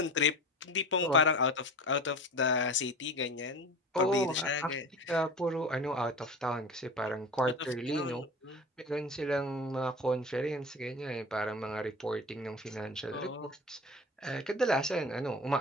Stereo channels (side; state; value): both; normal; correlation 0.34